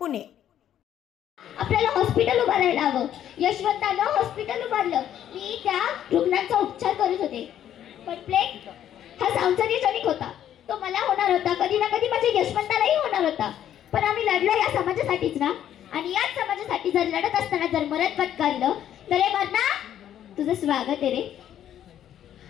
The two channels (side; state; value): right; quieter; 10.7 dB